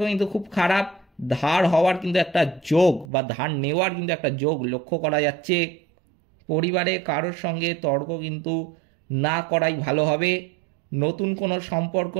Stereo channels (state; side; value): drops out; left; at 3.1 s